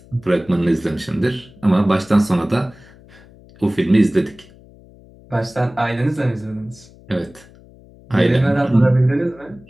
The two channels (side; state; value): left; noise; hum, 24 dB below the sound